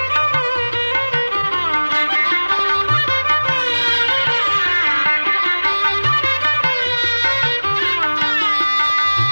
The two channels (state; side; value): inverted; both; correlation -1.00